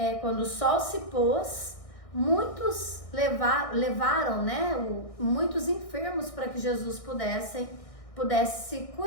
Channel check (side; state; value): right; late; 1.6 ms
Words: quando o sol se pôs, muitos levaram, muitos enfermos para que Jesus pudesse